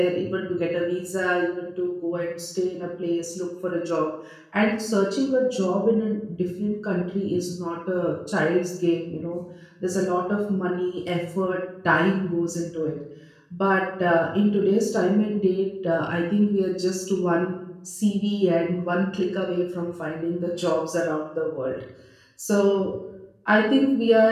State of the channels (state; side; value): identical; both; correlation 1.00